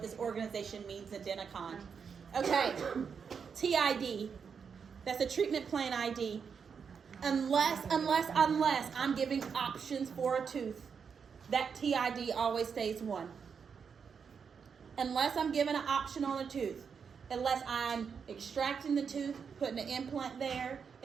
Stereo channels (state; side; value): quieter; left; 6.3 dB